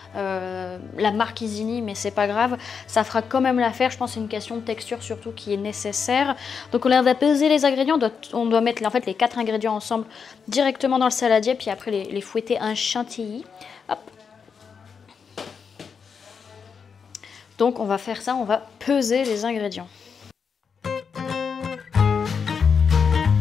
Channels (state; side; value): quieter; right; 6.2 dB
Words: la marque Isigny mais c'est pas grave, ça fera quand même l'affaire, je pense que c'est une question de texture surtout qui est nécessaire. Donc on va peser les ingrédients, on doit mettre en fait les 4 ingrédients ensemble directement dans le saladier puis après les fouetter un chantilly. Hop. Donc on va faire ça, on va peser les ingrédients.